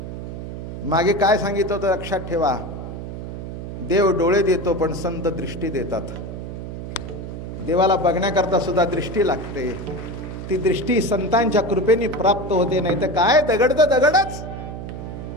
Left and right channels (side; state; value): right; noise; hum, 8 dB below the sound